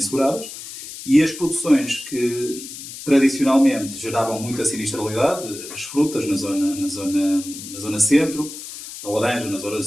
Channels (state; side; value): noise; left; hiss, 12 dB below the sound